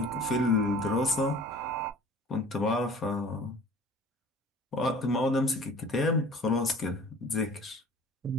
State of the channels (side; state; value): both; normal; correlation 0.47